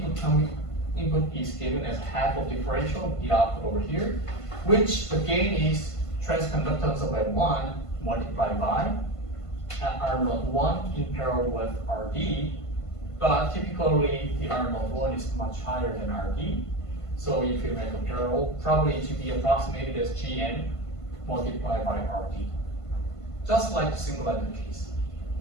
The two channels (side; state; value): right; late; 1.5 ms